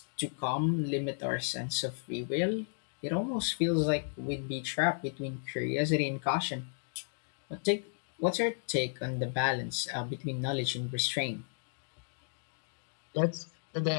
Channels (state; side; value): silent; right; digital silence